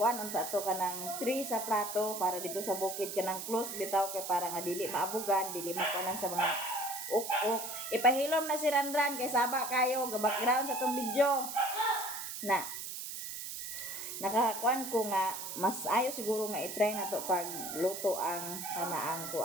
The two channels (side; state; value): right; noise; hiss, 7 dB below the sound